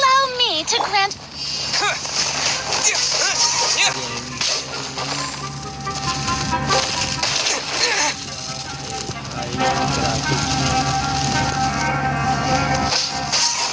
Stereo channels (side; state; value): both; identical; correlation 1.00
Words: me to grant.